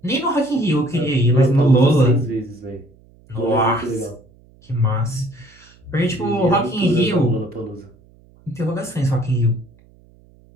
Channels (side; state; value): right; noise; hum, 28 dB below the sound